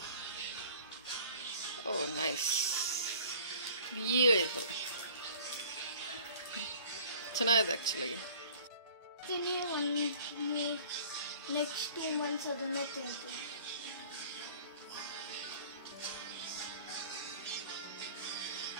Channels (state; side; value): inverted; both; correlation -0.50